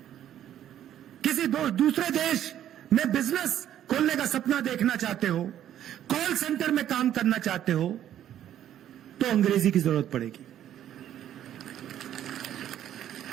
किसी दूसरे देश में बिजनेस खोलने का सपना देखना चाहते हो, कॉल सेंटर में काम करना चाहते हो, तो अंग्रेजी की जरूरत पड़ेगी।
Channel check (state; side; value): quieter; left; 11.1 dB